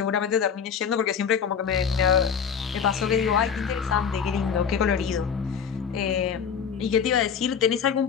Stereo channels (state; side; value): quieter; right; 7.1 dB